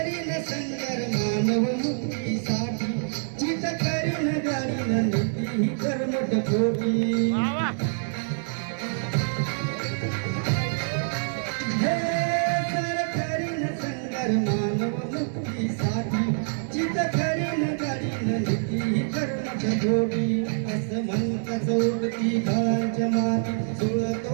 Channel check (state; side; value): silent; left; 59 dB below the other